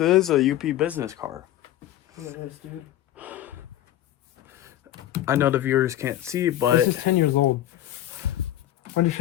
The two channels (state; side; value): quieter; right; 13.2 dB